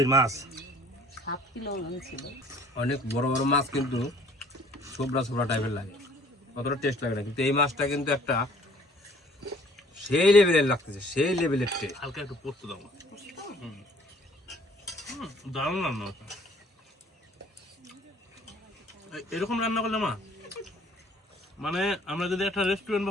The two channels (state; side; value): normal; both; correlation 0.56